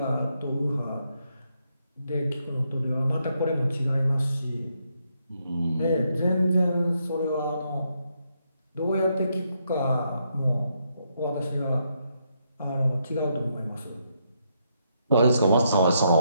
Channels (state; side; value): inverted; both; correlation -0.77